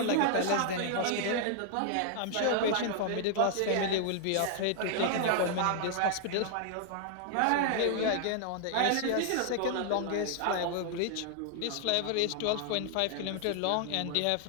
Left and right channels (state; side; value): different; both; correlation 0.00